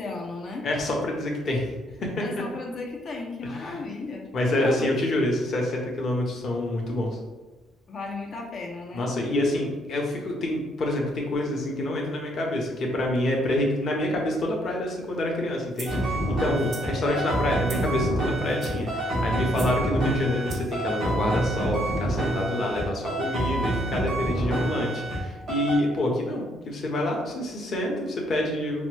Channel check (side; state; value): both; normal; correlation 0.71